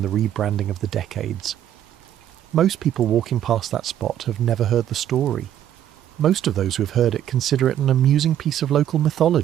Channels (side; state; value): left; quieter; 10.9 dB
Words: the rebranding of the decades. Most people walking past that spot have never heard the story. Most of those who have heard it consider it an amusing piece of local